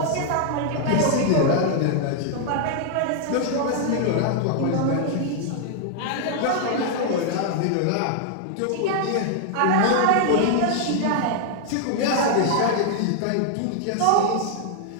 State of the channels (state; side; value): different; both; correlation 0.00